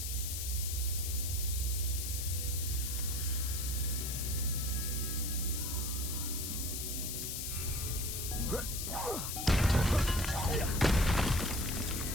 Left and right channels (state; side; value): noise; left; hiss, 3 dB below the sound